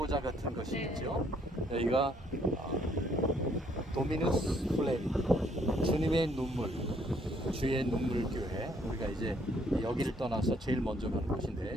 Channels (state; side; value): normal; both; correlation 0.66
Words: 같은 것이 있죠. 여기가 도미누스 플레리, 주님의 눈물, 주의 눈물 교회. 우리가 이제 여기를 떠나서 제일 먼저 가는